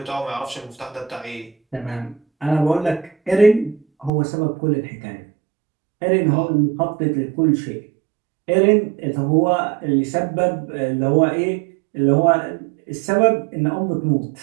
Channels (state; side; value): drops out; left; at 4.1 s